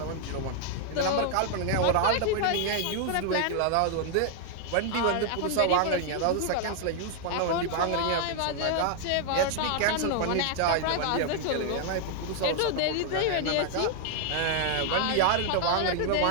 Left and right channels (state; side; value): different; both; correlation 0.00